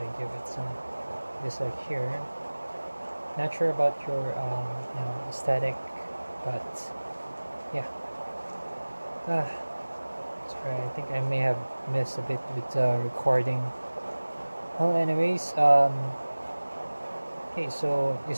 give it some just like here. Not sure about your aesthetic, but yeah. Sorry, I think I may have missed a bit with recording. Well, anyways, okay, so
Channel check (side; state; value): both; inverted; correlation -1.00